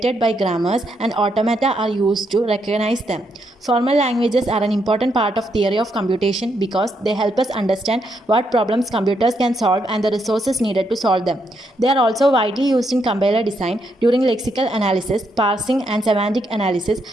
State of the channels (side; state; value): both; normal; correlation 0.78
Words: by grammars and automata are used to recognize them. Formal languages are an important part of theory of computation because they help us understand what problems computers can solve and the resources needed to solve them. They are also widely used in compiler design. During lexical analysis, parsing and semantic analysis,